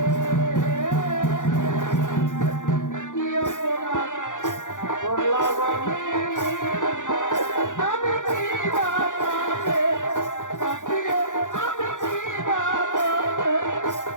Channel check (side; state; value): right; late; 0.87 ms